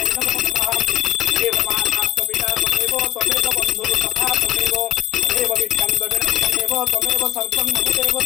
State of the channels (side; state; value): right; quieter; 13.7 dB